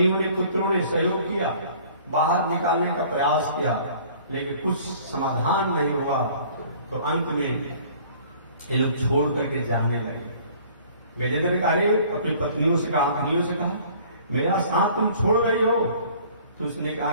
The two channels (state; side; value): inverted; both; correlation -0.52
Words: ने, पुत्रों ने सहयोग किया, बाहर निकालने का प्रयास किया, लेकिन कुछ समाधान नहीं हुआ, तो अंत में ये लोग छोड़ करके जानने लगे। गजेंद्र ने कहा, अपनी पत्नियों से कहा, मेरा साथ तुम छोड़ रही हो? तो उसने कहा